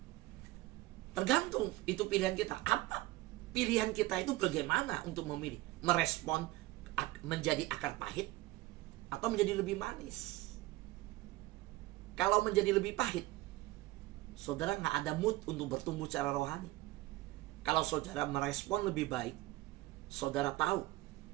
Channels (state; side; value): quieter; left; 18.9 dB